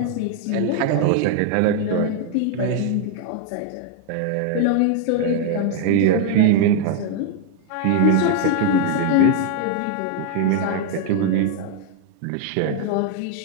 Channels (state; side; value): different; both; correlation 0.00